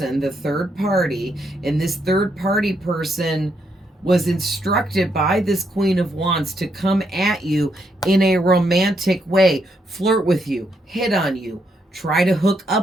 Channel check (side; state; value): both; normal; correlation 0.77